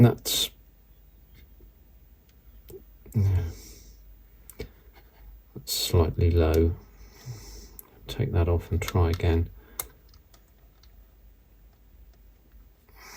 That's slightly low. Take that off and try again.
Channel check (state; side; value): identical; both; correlation 1.00